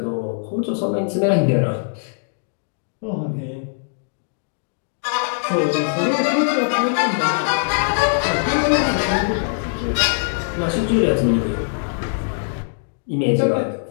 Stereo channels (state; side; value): silent; right; digital silence